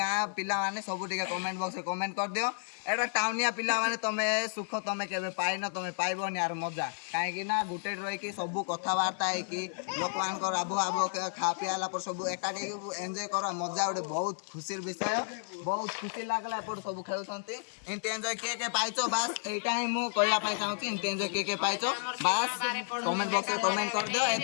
पिला माने सब टिके कमेंट बॉक्स रे कमेंट कर दियो एटा टाउनिया पिला माने तमे सुख तमे केबे पाइनो तमे पाइबोनी यार मजा काहे कि ना गुटे रही कि सब कथा वार्ता है कि लोक मान कर आबो आबो खा पियाला पर सब एकाडी एन्जॉय करा मजा उडे बहुत खुशीर विषय बहुत खुशी लागला पर सब खेलुछंती इनते एन्जॉय के पाइछो बस एटा ही मु कहया पई चाहूची इनते एन्जॉय के पाइछो बस कमेंट बॉक्स रे कमेंट कर दियो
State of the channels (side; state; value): right; silent; 56 dB below the other